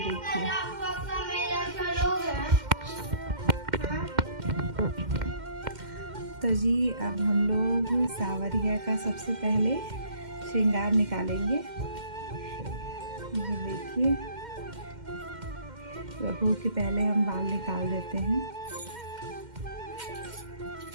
तो जी अब हम लोग सावरिया का सबसे पहले श्रृंगार निकालेंगे। ये देखिए, प्रभु के पहले हम बाल निकाल देते हैं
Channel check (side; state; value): left; late; 2.1 ms